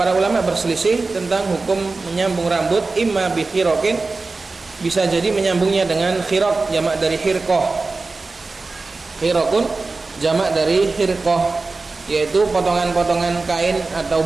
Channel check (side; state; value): left; quieter; 3.7 dB